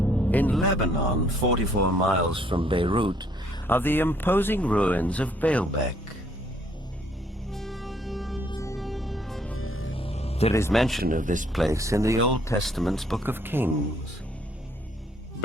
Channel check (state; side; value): normal; both; correlation 0.65